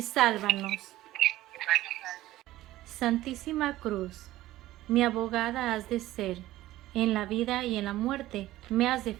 sálvanos. Santísima Cruz, mi abogada has de ser, en la vida y en la muerte me has de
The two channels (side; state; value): left; quieter; 15.8 dB